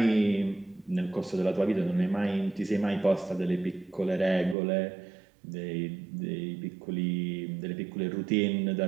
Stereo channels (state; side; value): drops out; left; at 4.5 s